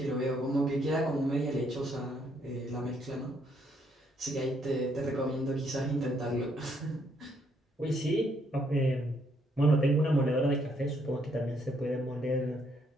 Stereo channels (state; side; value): normal; both; correlation 0.71